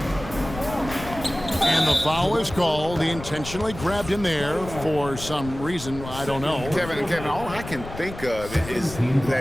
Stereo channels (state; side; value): noise; left; rumble, 12 dB below the sound